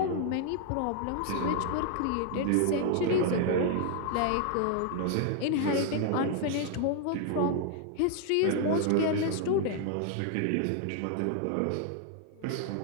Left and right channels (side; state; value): both; different; correlation 0.00